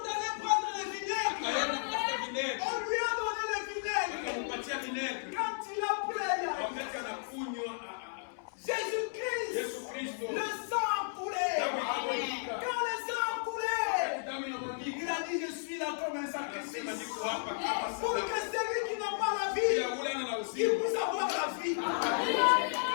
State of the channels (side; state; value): right; silent; 55 dB below the other